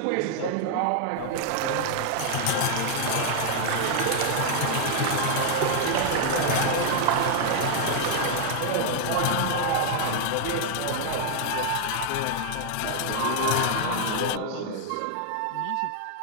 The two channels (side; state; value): both; different; correlation 0.00